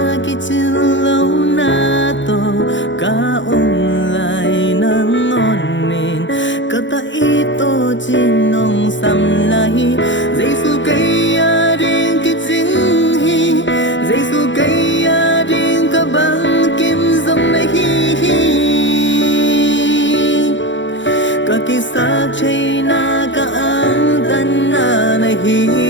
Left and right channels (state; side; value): late; right; 0.54 ms